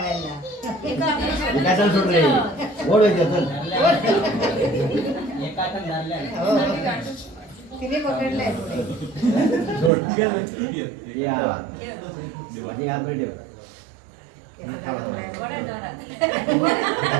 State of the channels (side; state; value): left; drops out; at 9.9 s